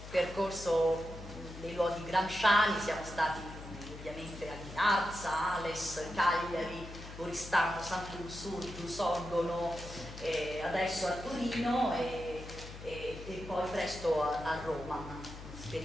percorso dei luoghi gramsciani. Siamo stati ovviamente a Ghinarza, Ales, Cagliari, Oristano, Sant'Ursulto, Sorgono, adesso a Torino e poi presto a Roma.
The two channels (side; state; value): left; noise; hum, 13 dB below the sound